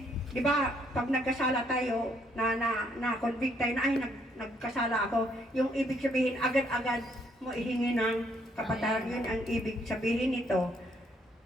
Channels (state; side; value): normal; both; correlation 0.70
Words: di ba, pag nagkasala tayo, na-convict tayo na, nagkasala ako, yung ibig sabihin, agad-agad mo ihingi ng kapatawaran. Yun ang ibig sabihin nito.